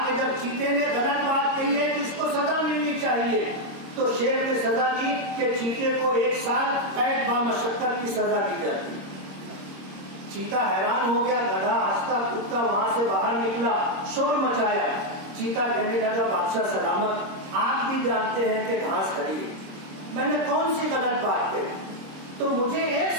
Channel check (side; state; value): left; late; 26 ms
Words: कि जब चीते ने गलत बात कही है तो इसको सजा मिलनी चाहिए। तो शेर ने सजा दी कि चीते को 1 साल कैद बामशक्कत की सजा दी जाती। चीता हैरान हो गया, गधा हंसता कूदता वहां से बाहर निकला, शोर मचाया। चीता कहने लगा, बादशाह सलामत, आप भी जानते हैं कि घास हरी है, मैंने कौन सी गलत बात कही, तो मुझे 1